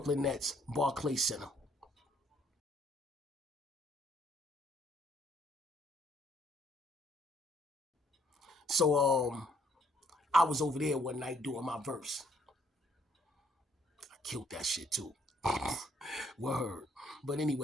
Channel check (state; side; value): normal; both; correlation 0.66